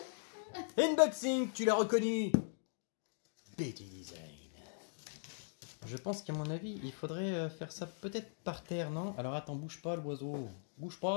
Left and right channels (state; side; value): silent; right; digital silence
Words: Unboxing, tu l'as reconnu. Betty Design. Je pense qu'à mon avis, il faudrait faire ça peut-être par terre, non? Alors attends, bouge pas l'oiseau. Bouge